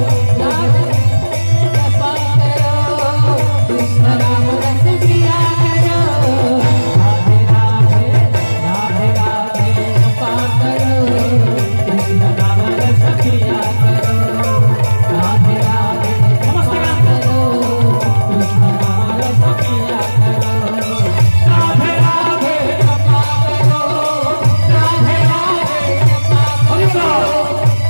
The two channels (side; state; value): both; inverted; correlation -1.00